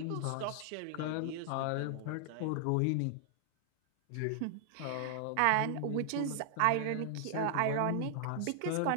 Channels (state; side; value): different; both; correlation 0.00